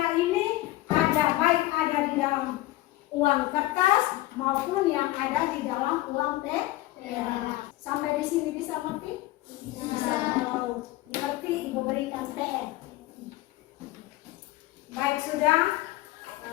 ini baik ada di dalam uang kertas maupun yang ada di dalam uang perak. Sampai di sini bisa mengerti? Bisa. Kalau mengerti, Ibu berikan TR. Baik, sudah.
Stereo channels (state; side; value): quieter; right; 17.7 dB